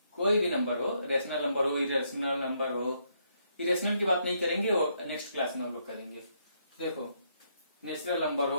कोई भी नंबर हो, रेशनल नंबर हो, इरेशनल नंबर हो, इरेशनल की बात नहीं करेंगे और नेक्स्ट क्लास में हम लोग करेंगे। देखो, नेचुरल नंबर हो,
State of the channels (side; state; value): both; inverted; correlation -0.75